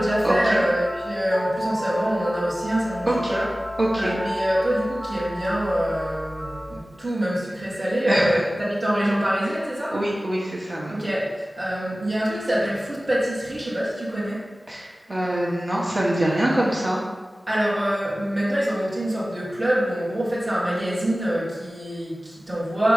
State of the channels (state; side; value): normal; both; correlation 0.97